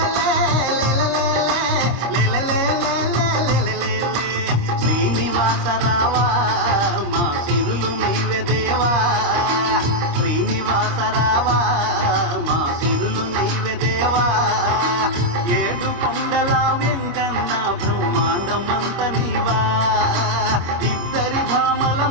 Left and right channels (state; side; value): late; left; 26 ms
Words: శ్రీనివాస రావా మా సిరులు నీవే దేవా, శ్రీనివాస రావా మా సిరులు నీవే దేవా. ఏడు కొండల వెంకన్న బ్రహ్మాండమంత నీవా, ఇద్దరి భామల